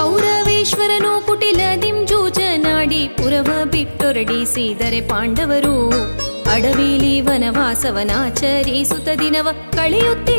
ಕುಟಿಲದಿಂ ಜೂಜನಾಡಿ ಪುರವ ಬಿಟ್ಟೊರಡಿಸಿದರೆ ಪಾಂಡವರು ಅಡವಿಲಿ ವನವಾಸವನಾಚರಿಸುತ್ತ ದಿನವ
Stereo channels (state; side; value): inverted; both; correlation -1.00